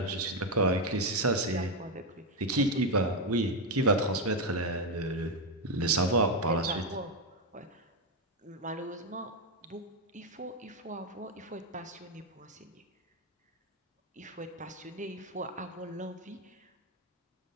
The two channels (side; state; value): both; normal; correlation 0.05